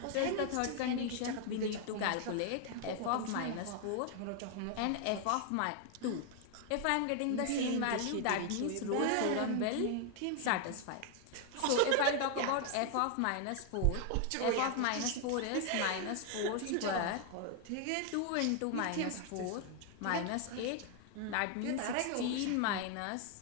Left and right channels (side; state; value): both; different; correlation 0.00